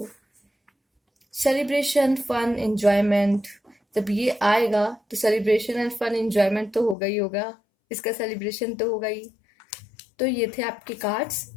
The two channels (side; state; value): right; drops out; at 7.0 s